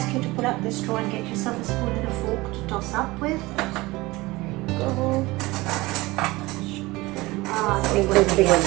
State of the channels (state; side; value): quieter; left; 21.0 dB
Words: you to pull up the straw and get yourself a spoon and a fork to toss up with. Go. Big one.